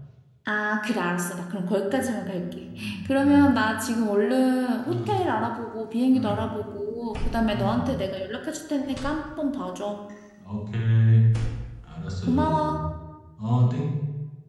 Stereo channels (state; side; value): identical; both; correlation 1.00